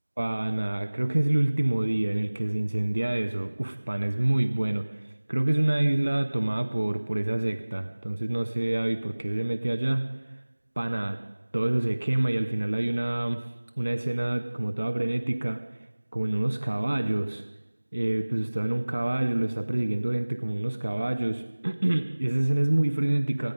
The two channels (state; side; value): inverted; both; correlation -1.00